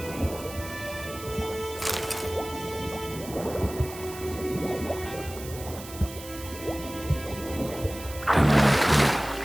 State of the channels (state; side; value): noise; right; hiss, 14 dB below the sound